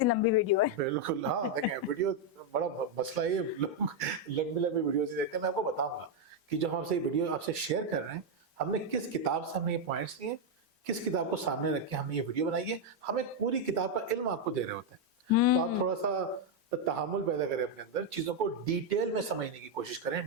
लंबी वीडियो है। बिल्कुल, हाँ देखें वीडियो बड़ा मसला है, लोग लंबी लंबी वीडियो से देखते हैं। मैं आपको बताऊंगा कि जो हम आपसे वीडियो आपसे शेयर कर रहे हैं, हमने किस किताब से हमने ये पॉइंट्स लिए, किस किताब को सामने रख के हमने ये वीडियो बनाई है। हम एक पूरी किताब का इल्म आपको दे रहे होते हैं, तो आप थोड़ा सा तहम्मुल पैदा करें अपने अंदर, चीजों को डिटेल में समझने की कोशिश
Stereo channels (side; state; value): both; normal; correlation 0.01